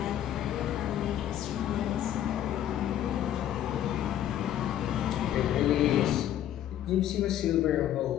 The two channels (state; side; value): quieter; right; 11.3 dB